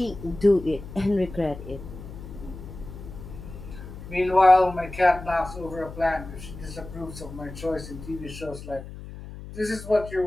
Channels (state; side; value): noise; left; hum, 13 dB below the sound